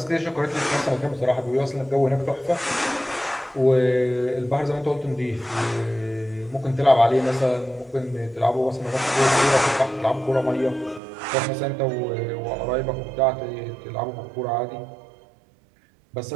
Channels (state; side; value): drops out; left; at 11.0 s